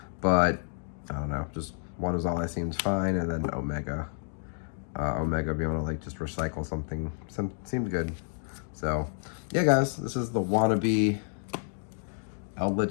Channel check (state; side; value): silent; right; 58 dB below the other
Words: but I don't know, just 1 is all that seems fine. And then Omega. Omega being able to like just recycle something seems good. So yeah, guys, this is the Wannabee